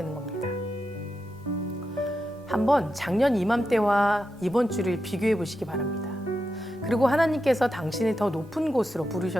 겁니다. 한번 작년 이맘때와 이번 주를 비교해 보시기 바랍니다. 그리고 하나님께서 당신을 더 높은 곳으로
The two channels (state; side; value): normal; both; correlation 0.88